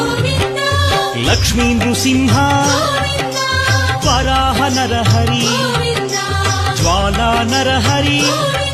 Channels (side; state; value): both; identical; correlation 1.00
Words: లక్ష్మీ నృసింహ వరాహ నరహరి జ్వాలా నరహరి